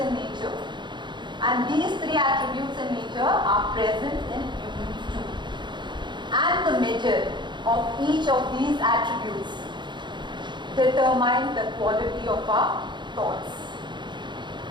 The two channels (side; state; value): left; late; 0.22 ms